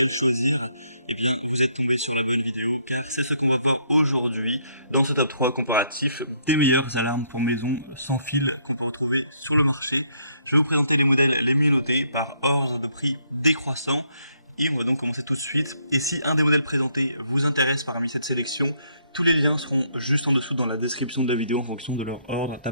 choisir. Eh bien, vous êtes tombé sur la bonne vidéo, car c'est ce qu'on va voir aujourd'hui dans ce top 3 comparatif des meilleures alarmes pour maison sans fil qu'on peut retrouver sur le marché. Je vais vous présenter les modèles les mieux notés par ordre de prix décroissant. Et on va donc commencer tout de suite. Et si un des modèles présentés vous intéresse parmi cette sélection, tous les liens seront juste en dessous dans la description de la vidéo en fonction de leur ordre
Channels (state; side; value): inverted; both; correlation -0.70